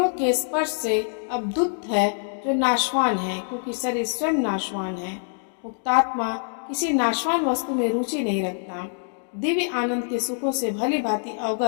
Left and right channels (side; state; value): right; silent; digital silence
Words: के स्पर्श से अवधुत है जो नाशवान है, क्योंकि शरीर स्वयं नाशवान है। मुक्तात्मा किसी नाशवान वस्तु में रुचि नहीं रखता। दिव्य आनंद के सुखों से भली भांति